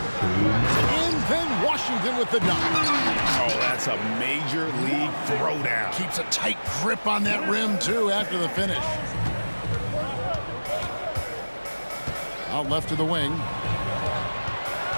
then Washington with the dunk. Oh, that's a major league throwdown. Keeps a tight grip on that rim, too, after the finish. Out left to the wing.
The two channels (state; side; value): inverted; both; correlation -1.00